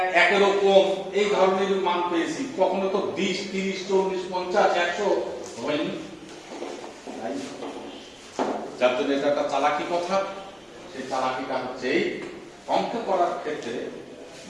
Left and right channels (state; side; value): identical; both; correlation 1.00